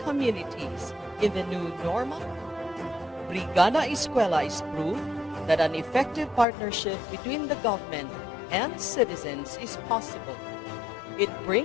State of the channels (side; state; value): right; drops out; at 6.5 s